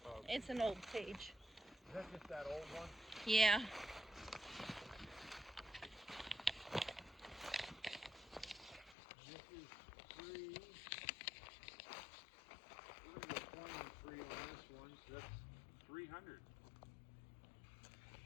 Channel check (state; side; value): drops out; right; at 9.0 s